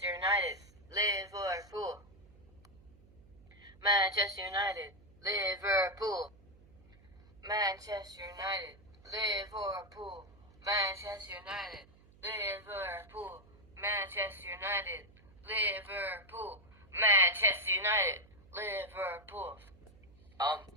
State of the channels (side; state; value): right; noise; hum, 25 dB below the sound